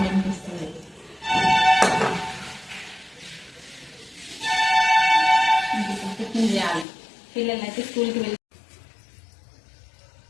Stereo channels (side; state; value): right; drops out; at 6.9 s